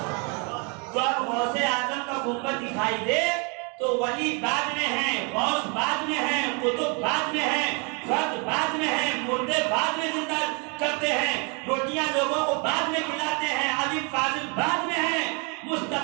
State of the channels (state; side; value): quieter; left; 33.8 dB